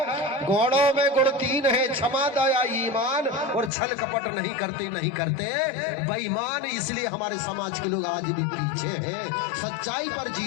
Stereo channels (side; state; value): right; drops out; at 3.7 s